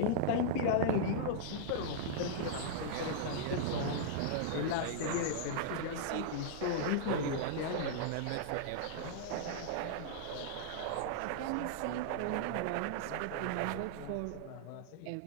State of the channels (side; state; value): both; different; correlation -0.02